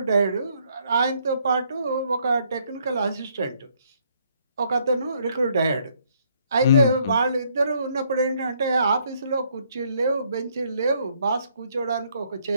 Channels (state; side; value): inverted; both; correlation -0.69